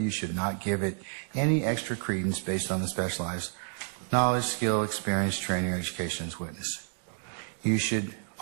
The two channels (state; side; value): silent; left; 58 dB below the other